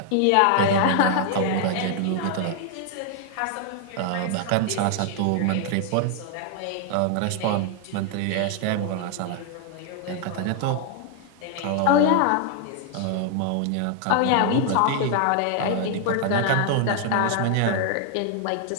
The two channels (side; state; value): both; different; correlation 0.00